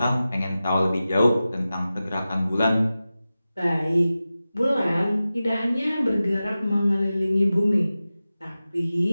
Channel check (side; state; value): both; inverted; correlation -0.95